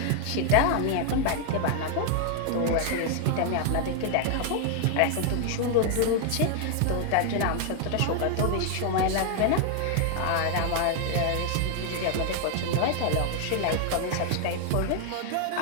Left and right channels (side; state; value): both; different; correlation 0.00